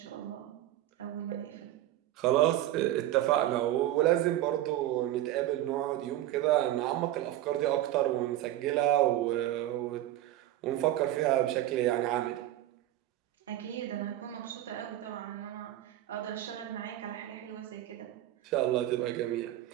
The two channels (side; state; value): left; quieter; 13.9 dB